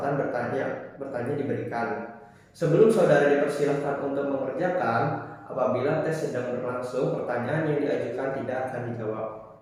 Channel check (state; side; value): identical; both; correlation 1.00